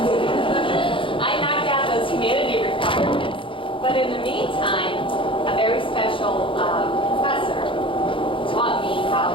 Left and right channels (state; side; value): late; right; 0.25 ms